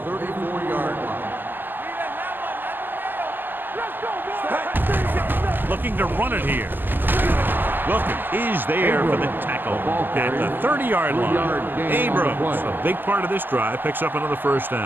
line. Looking to run it here. Wilkins is there for the tackle at the 30-yard line. Abrams, a big part of this drive, picks up another first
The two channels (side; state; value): left; late; 0.094 ms